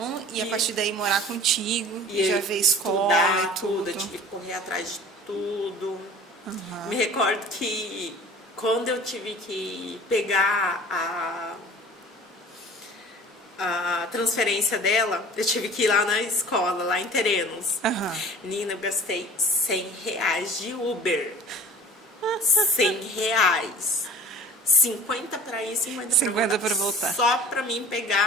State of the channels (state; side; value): normal; both; correlation 0.45